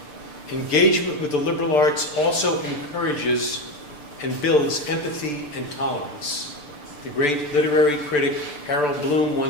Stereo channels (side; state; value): right; late; 6.8 ms